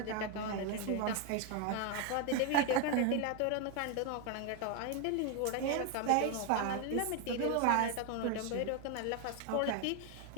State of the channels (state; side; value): different; both; correlation 0.01